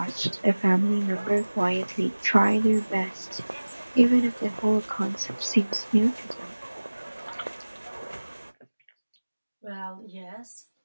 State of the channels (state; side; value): inverted; both; correlation -1.00